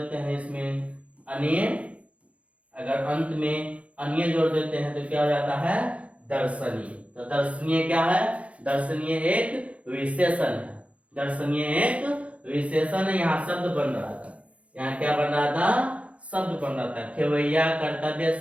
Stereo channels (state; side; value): late; left; 0.063 ms